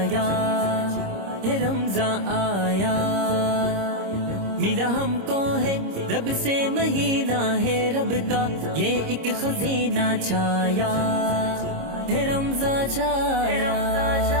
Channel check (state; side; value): late; left; 26 ms